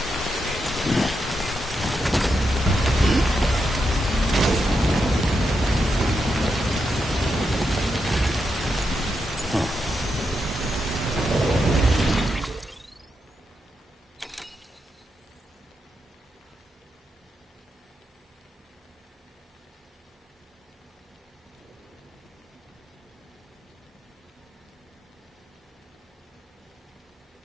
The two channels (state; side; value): normal; both; correlation 0.85